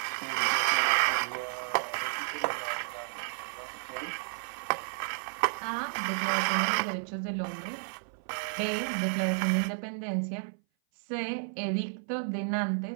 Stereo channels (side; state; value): left; silent; 57 dB below the other